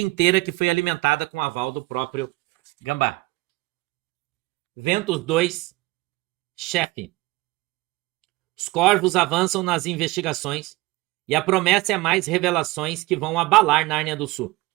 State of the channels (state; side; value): quieter; left; 21.3 dB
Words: que foi alimentada com o aval do próprio Gambá. Ventos 2, chefe. Os corvos avançam nas investigações e a promessa é mais revelações que vão abalar Nárnia do Sul.